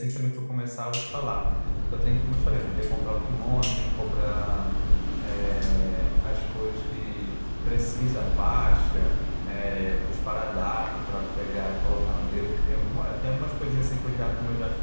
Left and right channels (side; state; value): both; inverted; correlation -1.00